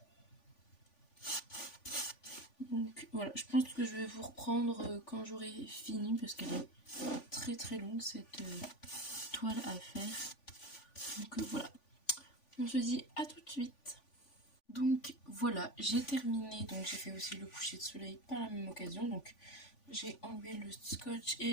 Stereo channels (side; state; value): right; late; 3.5 ms